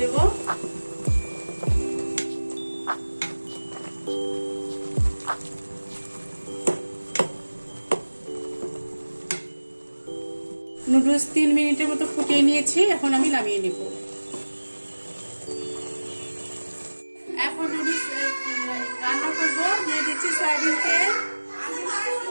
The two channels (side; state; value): both; inverted; correlation -1.00